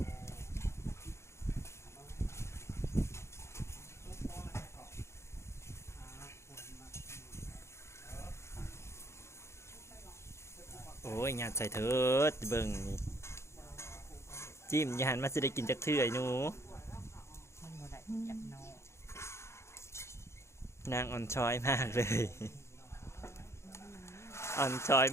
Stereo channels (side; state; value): right; late; 0.13 ms